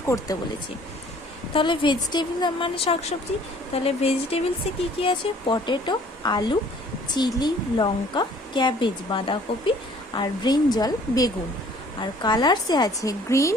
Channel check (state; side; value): normal; both; correlation 0.55